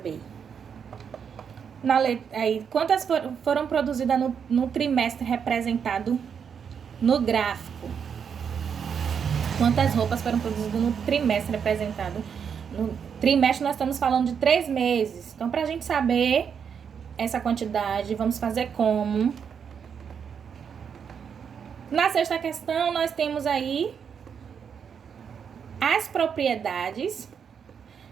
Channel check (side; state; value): left; quieter; 7.1 dB